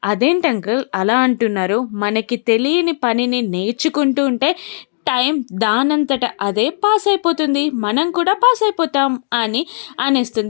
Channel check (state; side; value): silent; right; digital silence